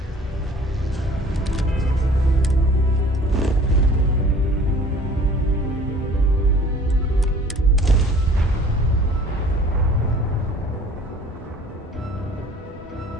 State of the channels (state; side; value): normal; both; correlation 0.50